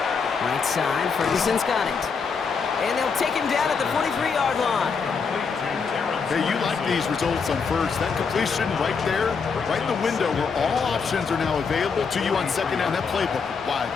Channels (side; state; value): right; quieter; 5.5 dB